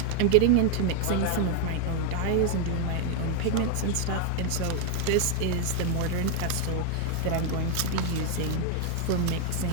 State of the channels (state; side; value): different; both; correlation 0.00